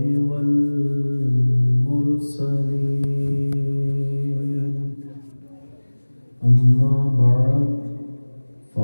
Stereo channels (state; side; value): inverted; both; correlation -1.00